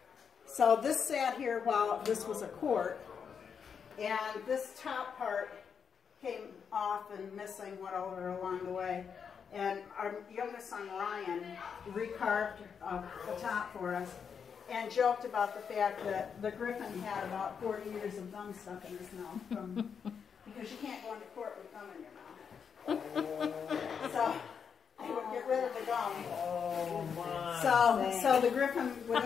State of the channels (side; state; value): right; quieter; 6.7 dB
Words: So this sat here while this was a court, and this top part came off and missing, went over along the way. And our youngest son, Ryan, recarved the top for us and joked about the fact that the griffin had about 40 years of gum stuck in his mouth, because you can't go into court with gum in your mouth. So they would get rid of the gum. Oh, my. So the griffin would